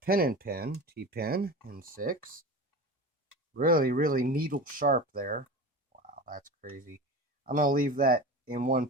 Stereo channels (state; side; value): normal; both; correlation 0.30